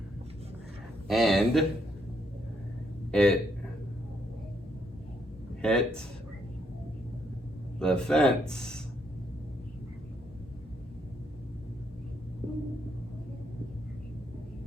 and it hit the fence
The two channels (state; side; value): normal; both; correlation 0.74